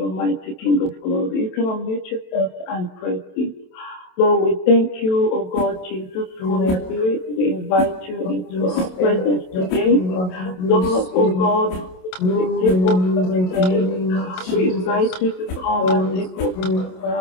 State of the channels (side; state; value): right; late; 27 ms